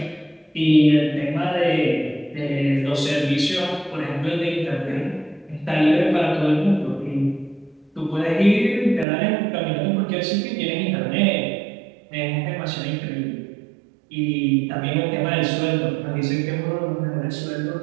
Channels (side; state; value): left; drops out; at 9.1 s